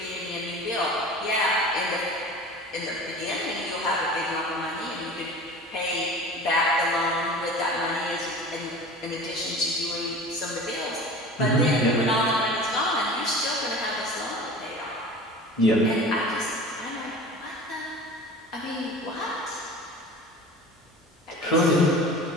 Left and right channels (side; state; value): both; normal; correlation 0.38